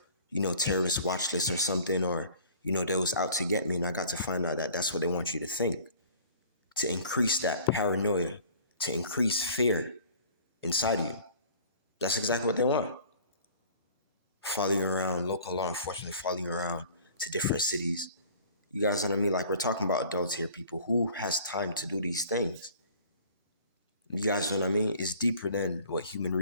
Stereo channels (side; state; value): both; inverted; correlation -0.48